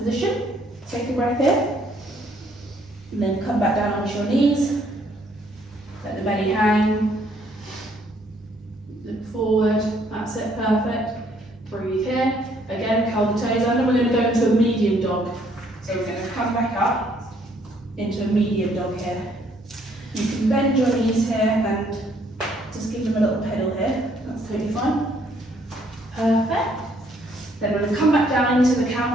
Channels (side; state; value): both; normal; correlation 0.66